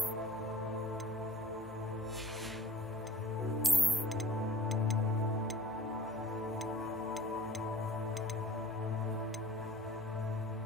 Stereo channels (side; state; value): left; noise; hum, 24 dB below the sound